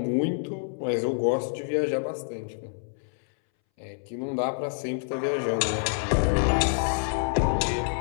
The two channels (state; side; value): silent; right; 60 dB below the other